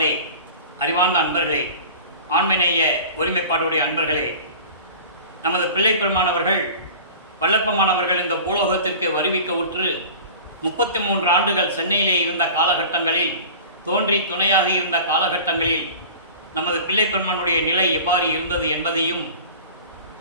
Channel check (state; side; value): inverted; both; correlation -0.39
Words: அறிவார்ந்த அன்பர்களே, ஆண்மநேய ஒருமைப்பாடுடைய அன்பர்களே, நமது பிள்ளை பெருமானவர்கள் வல்லப்பமானவர்கள் இந்த பூலோகத்திற்கு வருவிக்க உற்று 33 ஆண்டுகள் சென்னையிலே இருந்த காலகட்டங்களில், தோன்றி துணையாக இருந்த காலகட்டங்களில் நமது பிள்ளை பெருமானுடைய நிலை எவ்வாறு இருந்தது என்பதையும்,